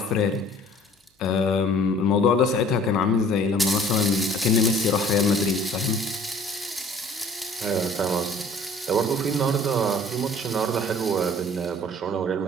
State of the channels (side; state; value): both; normal; correlation 0.52